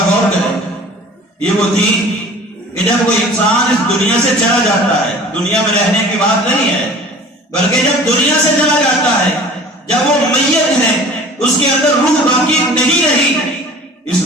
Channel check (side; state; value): both; normal; correlation 0.44